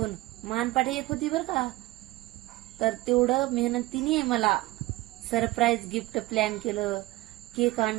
मानपाठी एक होती बर का, तर तेवढं मेहनतीने मला सरप्राईज गिफ्ट प्लॅन केलं. केक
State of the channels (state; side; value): quieter; left; 19.1 dB